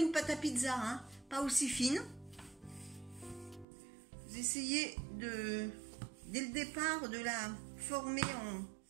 pâte à pizza, hein, pas aussi fine. Vous essayez dès le départ de la former en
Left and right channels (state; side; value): drops out; left; at 3.7 s